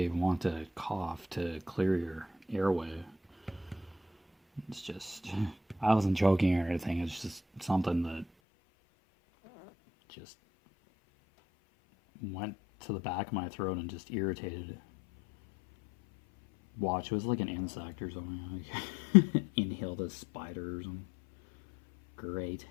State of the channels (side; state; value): right; drops out; at 8.2 s